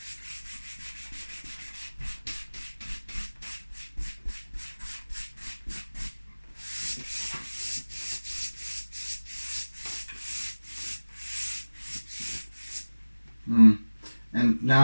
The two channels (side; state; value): both; inverted; correlation -1.00